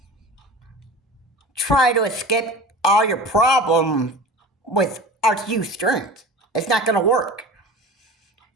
try to escape all your problems with RTU streams. It's not going to work.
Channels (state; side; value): normal; both; correlation 0.36